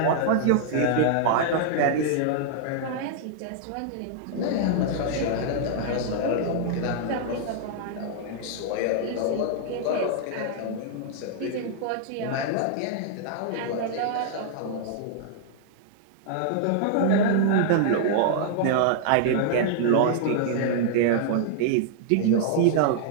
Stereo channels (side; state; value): both; different; correlation -0.01